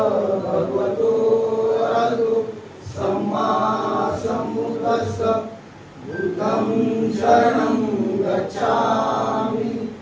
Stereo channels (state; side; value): identical; both; correlation 1.00